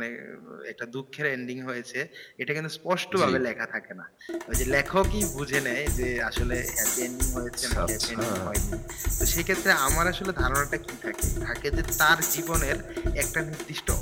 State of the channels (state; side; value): identical; both; correlation 1.00